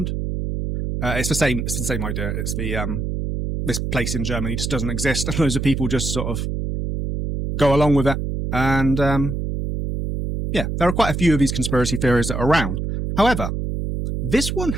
It's the same idea. It's the this place in Germany just doesn't exist, and loads of people just sort of go along with it. And yeah, there are quite a few of these conspiracy theories that are around. However, this one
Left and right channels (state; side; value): noise; right; hum, 3 dB below the sound